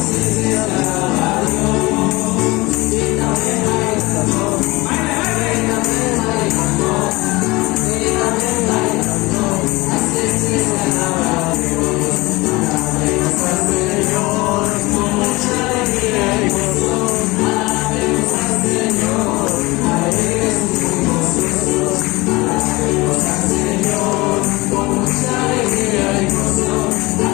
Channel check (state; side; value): quieter; right; 22.4 dB